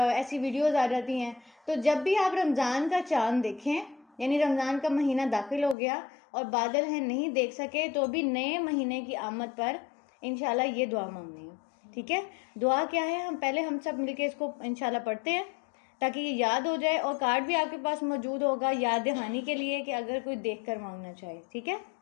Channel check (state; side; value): drops out; right; at 5.8 s